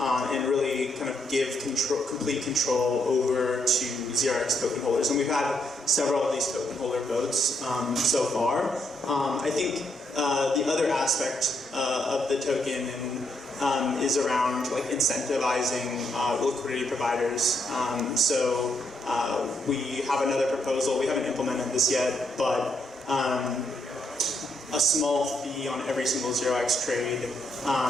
really kind of give complete control over to ZRX token holders. And we've had several of these token holder votes so far. I think the other aspect of the token is around like incentivizing liquidity providers. So we have another proposal. We haven't implemented this yet, but a small fee on every single 0x trade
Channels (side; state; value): both; normal; correlation 0.76